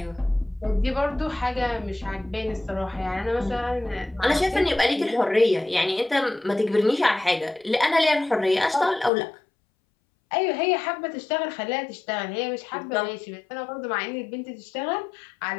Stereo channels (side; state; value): right; drops out; at 9.1 s